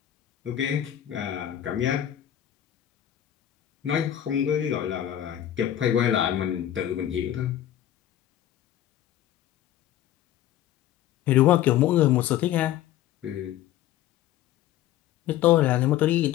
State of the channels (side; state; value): right; quieter; 12.0 dB